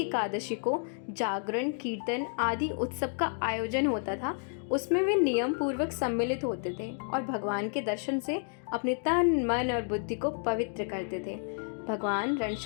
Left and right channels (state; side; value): silent; right; 57 dB below the other